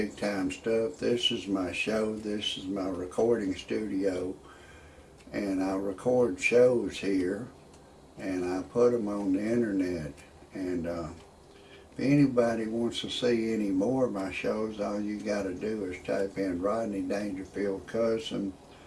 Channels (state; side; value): identical; both; correlation 1.00